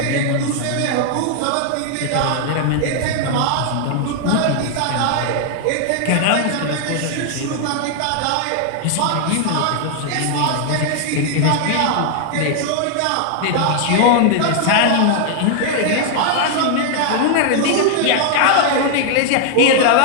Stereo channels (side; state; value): both; different; correlation 0.00